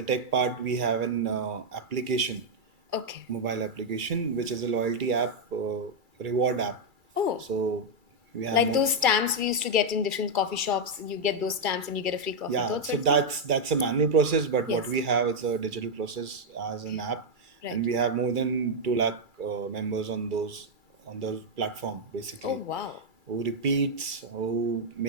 tech part, we have an application, Okay. mobile application, which is a loyalty app, reward app. Oh, So we have like those stamps we used to get in different coffee shops. You get those stamps and you get a free coffee. yeah. Those So sorts of- that's a manual process, but what Yes. we have is a digital process as an app, Right. and we have more than 2 lakh members on those platform basically. Oh wow. Who repeats, who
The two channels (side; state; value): left; late; 2.3 ms